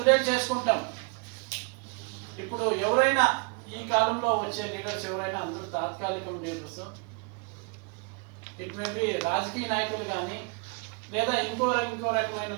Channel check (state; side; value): quieter; left; 35.4 dB